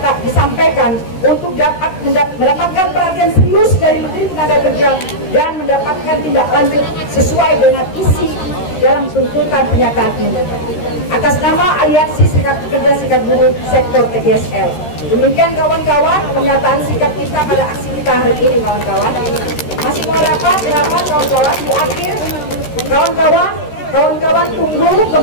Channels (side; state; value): right; late; 13 ms